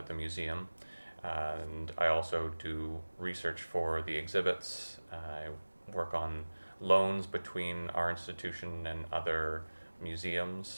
the museum, and I also do research for the exhibits. I work on loans between our institution and other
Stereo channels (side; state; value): both; inverted; correlation -1.00